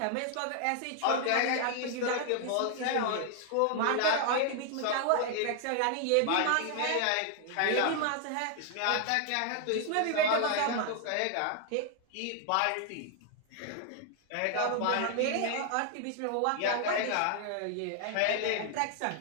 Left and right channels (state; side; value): different; both; correlation 0.00